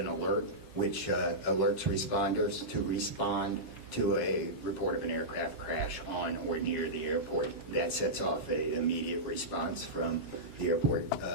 alert, which alerts responders to respond to a report of an aircraft crash on or near the airport. That sets off an immediate response from the Airport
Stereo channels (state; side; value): late; left; 3.1 ms